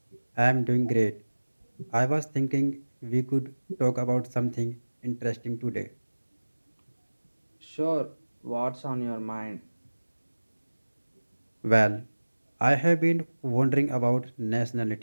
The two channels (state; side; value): inverted; both; correlation -1.00